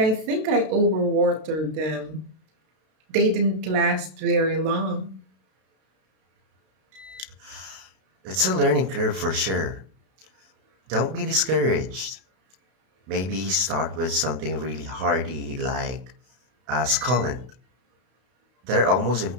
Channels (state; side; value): late; left; 32 ms